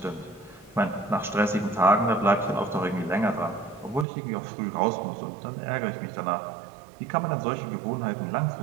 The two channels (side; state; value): left; drops out; at 4.0 s